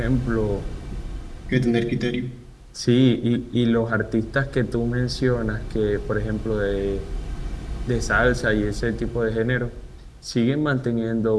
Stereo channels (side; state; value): both; identical; correlation 1.00